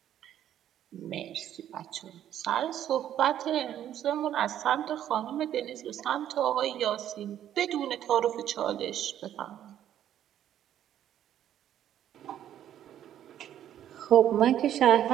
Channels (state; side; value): quieter; left; 10.9 dB